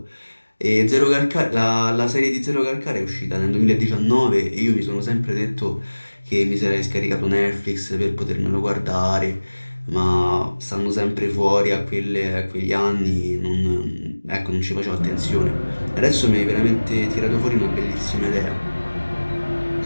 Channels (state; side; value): inverted; both; correlation -1.00